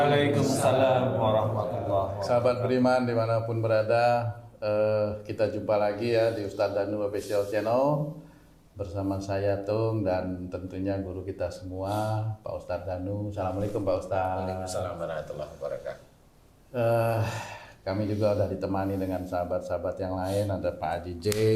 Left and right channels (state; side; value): identical; both; correlation 1.00